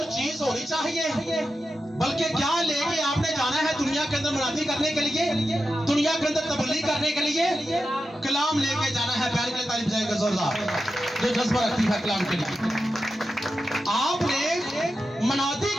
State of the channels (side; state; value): both; normal; correlation 0.90